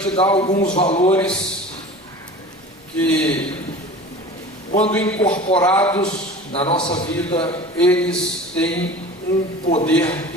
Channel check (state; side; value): normal; both; correlation 0.38